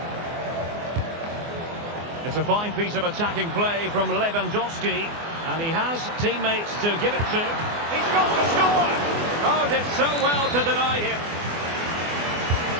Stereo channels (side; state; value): left; late; 24 ms